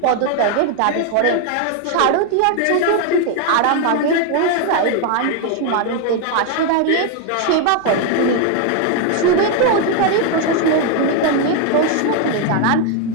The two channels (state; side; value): different; both; correlation 0.01